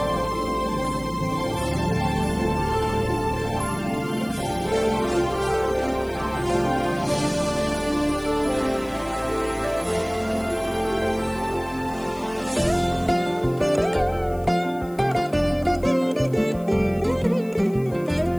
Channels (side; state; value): left; noise; hiss, 25 dB below the sound